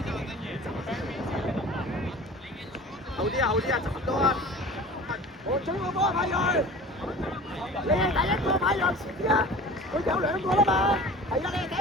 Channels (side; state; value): both; normal; correlation 0.40